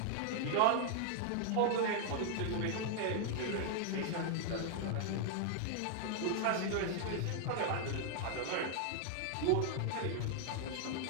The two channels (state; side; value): different; both; correlation 0.00